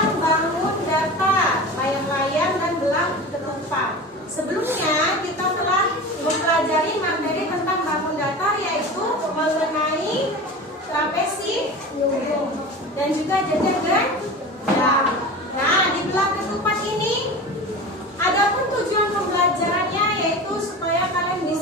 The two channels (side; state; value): both; normal; correlation 0.32